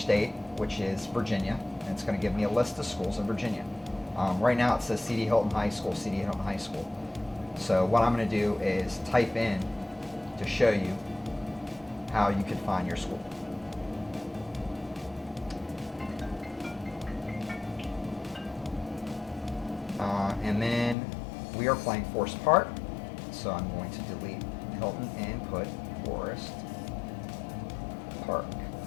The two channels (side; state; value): right; drops out; at 21.0 s